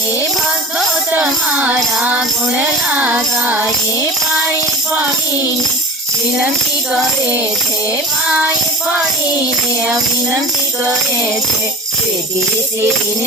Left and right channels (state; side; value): normal; both; correlation 0.37